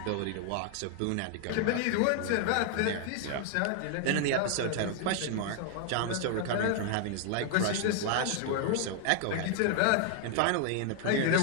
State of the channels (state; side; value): different; both; correlation 0.00